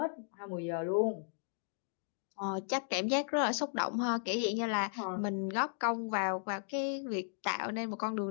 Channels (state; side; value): silent; right; digital silence